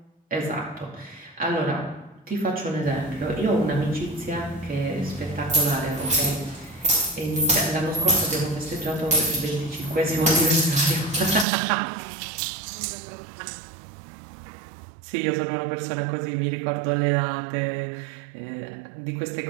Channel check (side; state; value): left; drops out; at 11.5 s